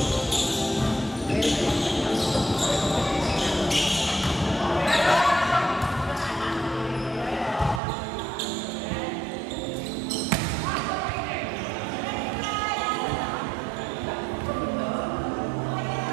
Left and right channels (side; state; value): left; drops out; at 7.8 s